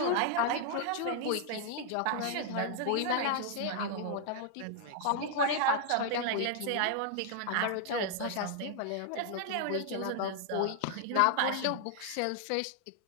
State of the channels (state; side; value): different; both; correlation -0.01